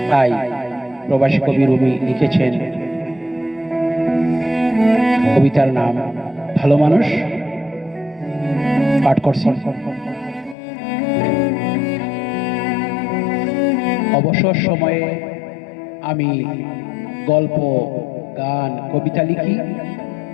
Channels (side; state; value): right; drops out; at 10.6 s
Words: তাই প্রবাসী কবি রুমি লিখেছেন কবিতার নাম ভালো মানুষ। পাঠ করছি। অবসর সময়ে আমি গল্প, গান, কবিতা লিখি।